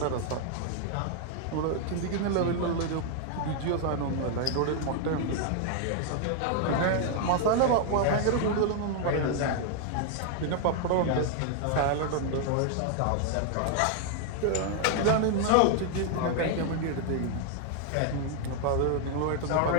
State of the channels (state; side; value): different; both; correlation 0.00